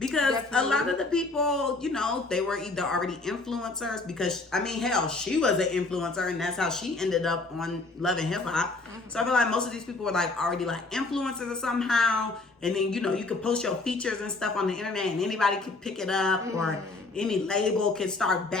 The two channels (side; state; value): right; quieter; 3.4 dB